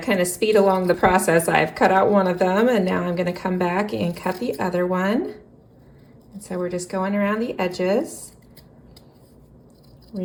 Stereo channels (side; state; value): both; identical; correlation 1.00